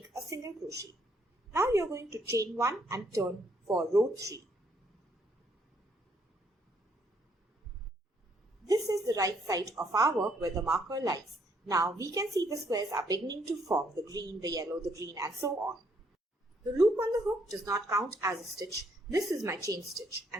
a single crochet. Now you are going to chain 1 and turn for row 3. This is the right side of our work where the marker lies. Now we can see the squares are beginning to form, the green, the yellow, the green, and so on. The loop on the hook does not count as a stitch. This is my chain stitch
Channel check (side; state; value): both; normal; correlation 0.70